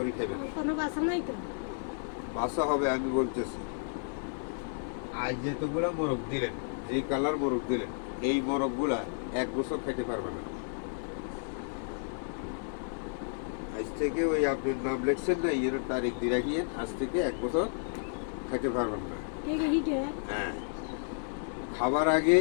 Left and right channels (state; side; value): silent; right; 56 dB below the other